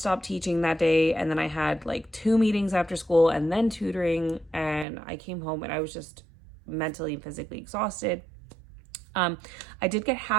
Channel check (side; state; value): left; drops out; at 4.9 s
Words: teaching that day, and then I had like 2 meetings after school and then tutoring, and I came home and I was just mentally and physically exhausted. I did get